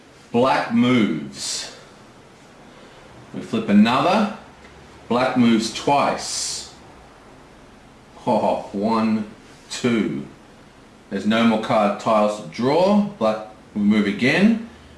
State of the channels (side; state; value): both; identical; correlation 1.00